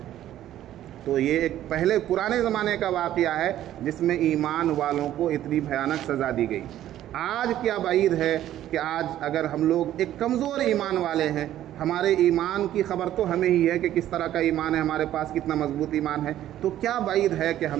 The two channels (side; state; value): left; quieter; 12.5 dB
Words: تو یہ ایک پہلے پرانے زمانے کا واقعہ ہے جس میں ایمان والوں کو اتنی بھیانک سزا دی گئی۔ آج کیا بعید ہے کہ آج اگر ہم لوگ ایک کمزور ایمان والے ہیں، ہمارے ایمان کی خبر تو ہمیں ہی ہے کہ کس طرح کا ایمان ہے ہمارے پاس، کتنا مضبوط ایمان ہے، تو کیا بعید ہے کہ